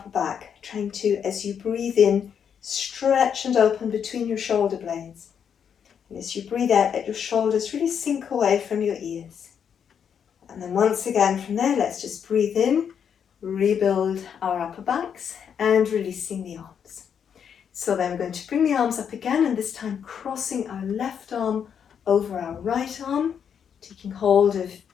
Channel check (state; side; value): quieter; right; 7.8 dB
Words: back, trying to, as you breathe in, stretch and open between your shoulder blades. And as you breathe out, let your shoulders really sink away from your ears. And then once again from there, let's just breathe in, rebuild our upper backs, and releasing the arms. So then we're going to bring the arms up again, and this time crossing our left arm over our right arm, taking hold of